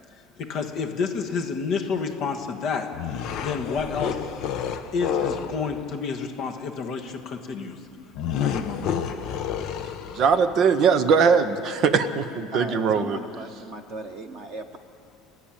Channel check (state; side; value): normal; both; correlation 0.48